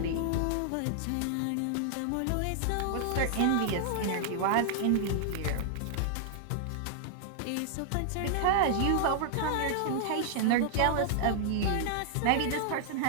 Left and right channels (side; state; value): both; different; correlation -0.01